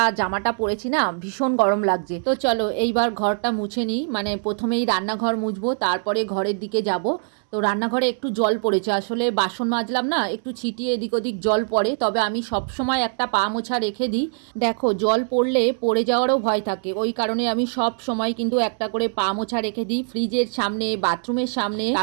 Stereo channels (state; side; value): silent; left; 58 dB below the other